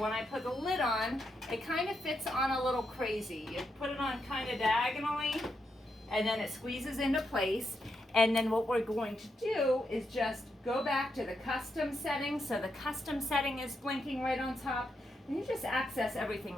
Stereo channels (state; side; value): normal; both; correlation 0.82